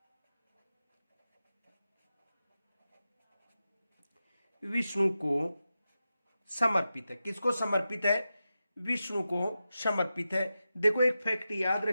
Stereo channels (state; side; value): inverted; both; correlation -0.91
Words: विष्णु को समर्पित है। किसको समर्पित है? विष्णु को समर्पित है। देखो, एक फैक्ट याद